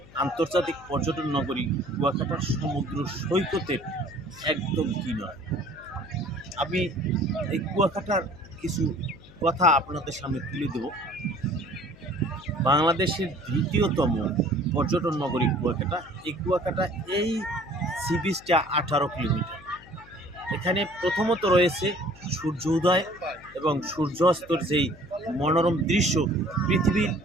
আন্তর্জাতিক পর্যটন নগরী কুয়াকাটার সমুদ্র সৈকতের একদম কিনারে। আমি এই কুয়াকাটার কিছু কথা আপনাদের সামনে তুলে দেব। বাংলাদেশের দ্বিতীয়তম পর্যটন নগরী কুয়াকাটা। এই কুয়াকাটা এই সি বিচটা 18 কিলোমিটার। এখানে প্রথমত রয়েছে সূর্য উদয় এবং সূর্যাস্তর যেই মনোরম দৃশ্য, পৃথিবীর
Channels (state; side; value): noise; left; hum, 22 dB below the sound